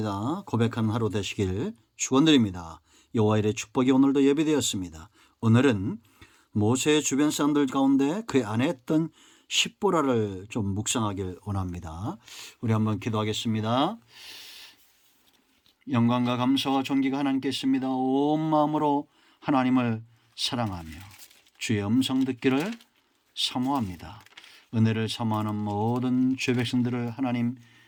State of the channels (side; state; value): both; identical; correlation 1.00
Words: 고백하는 하루 되시길 축원드립니다. 여호와 일의 축복이 오늘도 예비되었습니다. 오늘은 모세의 주변 사람들 가운데 그의 아내 했던 십보라를 좀 묵상하길 원합니다. 우리 한번 기도하겠습니다. 영광과 감사와 존귀가 하나님께 있습니다. 온 마음으로 하나님을 사랑하며 주의 음성 듣기를 사모합니다. 은혜를 사모하는 모든 주의 백성들을 하나님